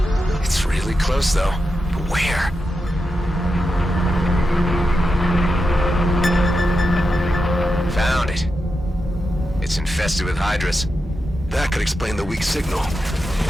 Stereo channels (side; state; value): both; normal; correlation 0.88